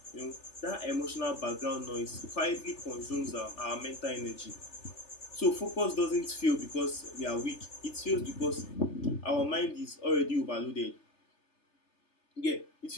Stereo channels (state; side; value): late; right; 3.4 ms